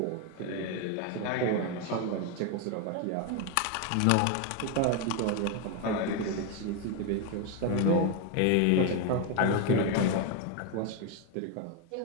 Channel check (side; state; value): both; different; correlation 0.01